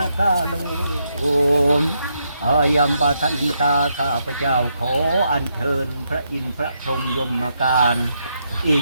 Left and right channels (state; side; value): inverted; both; correlation -0.80